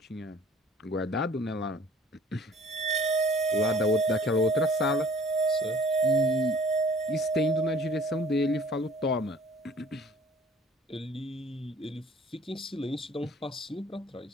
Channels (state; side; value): normal; both; correlation 0.51